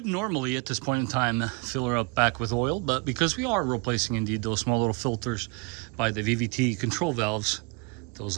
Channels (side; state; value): left; quieter; 31.2 dB